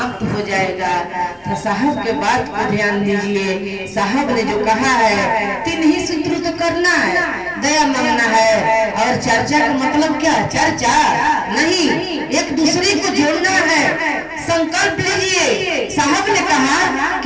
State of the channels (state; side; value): identical; both; correlation 1.00